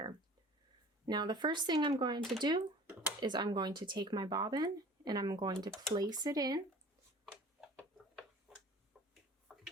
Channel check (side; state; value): both; normal; correlation 0.45